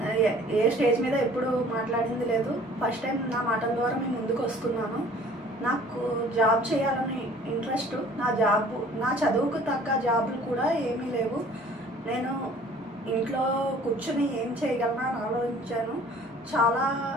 ఏ స్టేజ్ మీద ఎప్పుడు మాట్లాడింది లేదు. ఫస్ట్ టైం నా మాటల ద్వారా మేము ముందుకు వస్తున్నాను. నాకు జాబ్ చేయాలని ఇంట్రెస్ట్. నా చదువుకు తగ్గ జాబులు కూడా ఏమీ లేవు. నేను ఇంట్లో కూర్చొని ఏం చేయగలనా అని ఆలోచించాను.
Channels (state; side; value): normal; both; correlation 0.51